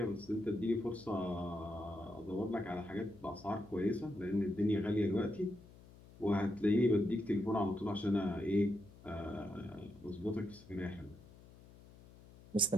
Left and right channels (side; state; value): left; noise; hum, 21 dB below the sound